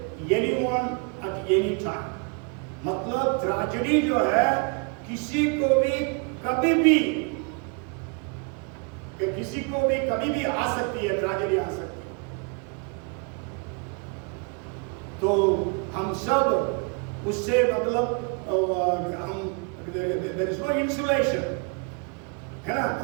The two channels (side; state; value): left; quieter; 36.0 dB